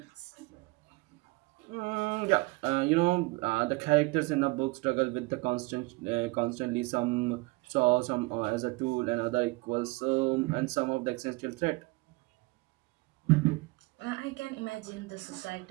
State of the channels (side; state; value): left; quieter; 24.7 dB